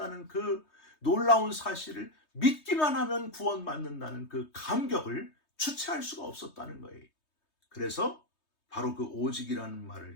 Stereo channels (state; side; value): late; right; 3.2 ms